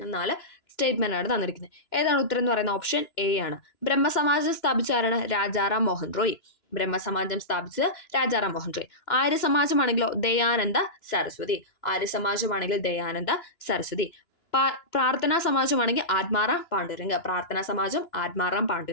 സ്റ്റേറ്റ്മെന്റ് ആണ് തന്നിരിക്കുന്നത്. ഏതാണ് ഉത്തരം എന്ന് പറയുന്നത്? ഓപ്ഷൻ എ ആണ്. ബ്രഹ്മസമാജം സ്ഥാപിച്ച ആരാണ്? രാജാറാം മോഹൻ റോയ്. ബ്രഹ്മസമാജം സ്ഥാപിച്ചത് രാജാറാം മോഹൻ റോയ്. ആര്യസമാജമാണെങ്കിലോ ദയാനന്ദ സരസ്വതി. ആര്യസമാജമാണെങ്കിൽ ദയാനന്ദ സരസ്വതി. പ്രാർത്ഥനാ സമാജമാണെങ്കിൽ ആത്മാറാം പാണ്ഡുരംഗ്. പ്രാർത്ഥനാ സമാജം ആത്മാറാം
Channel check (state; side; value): late; right; 2.9 ms